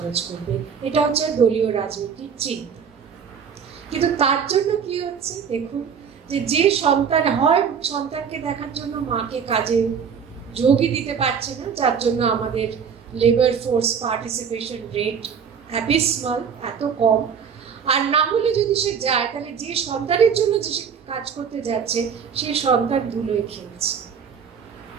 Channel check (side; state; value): left; quieter; 6.9 dB